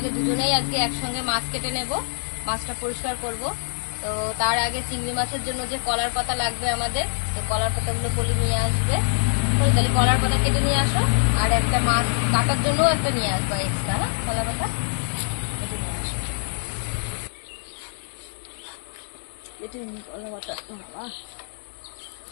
দুজনেই আজকে একসঙ্গে মাছ কেটে নেব, মাছটা পরিষ্কার করব। তো তার আগে চিংড়ি মাছের জন্য যে কলার পাতা লাগবে আমাদের, তো কলার পাতাগুলো পলি নিয়ে আসবে। তাহলে কলার পাতা কেটে নিয়ে আসো, আর একটা মাছ কাটার জন্য একটা নিয়ে আসবা এক্সট্রা। হ্যাঁ, কলা পাতা কেটে নিয়ে আসো। কেটে নিই কলা পাতা। বাবা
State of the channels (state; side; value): silent; right; 62 dB below the other